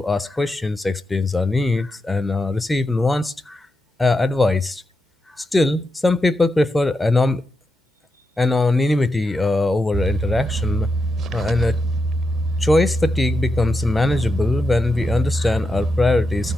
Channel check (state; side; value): normal; both; correlation 0.86